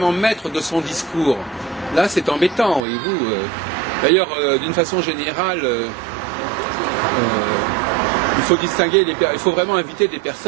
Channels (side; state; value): left; drops out; at 2.8 s